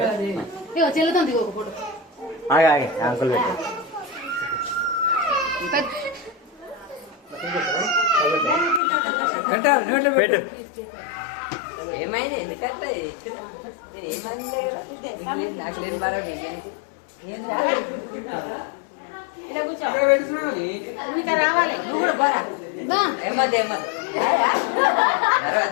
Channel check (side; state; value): right; drops out; at 8.8 s